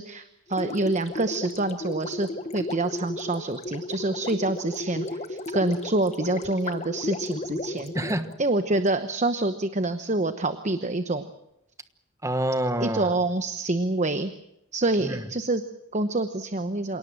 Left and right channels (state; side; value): normal; both; correlation 0.40